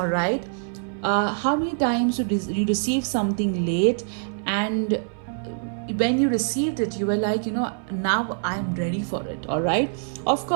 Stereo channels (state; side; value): silent; left; 60 dB below the other